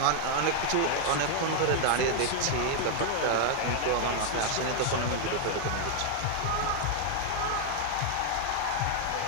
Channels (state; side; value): different; both; correlation 0.00